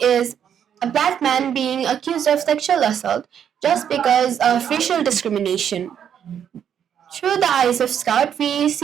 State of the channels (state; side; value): quieter; left; 8.8 dB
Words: is a black man being accused of sexual assault just because of racial discrimination. Through the eyes of Scout, we